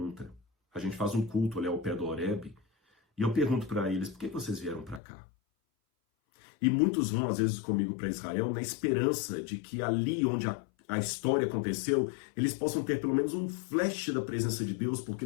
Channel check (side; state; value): right; drops out; at 5.0 s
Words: A gente faz um culto ali ao pé do Horebe, e eu pergunto para eles, por que vocês vieram para cá? E muitos vão, às vezes, comigo para Israel, na esperança de que ali onde a história aconteceu, eles possam ter pelo menos um flash da presença de Deus, porque